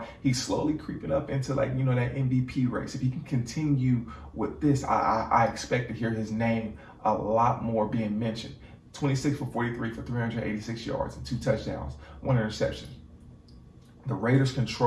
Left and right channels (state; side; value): identical; both; correlation 1.00